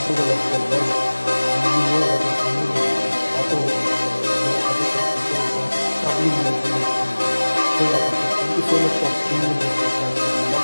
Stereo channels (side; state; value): both; inverted; correlation -1.00